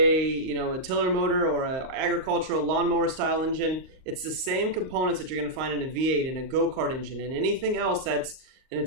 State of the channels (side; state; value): left; late; 38 ms